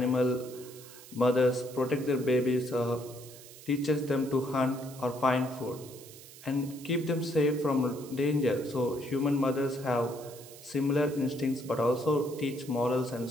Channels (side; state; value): right; noise; hiss, 18 dB below the sound